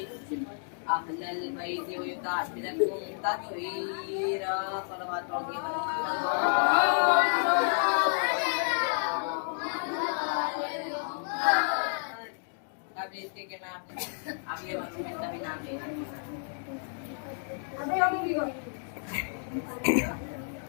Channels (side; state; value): right; silent; digital silence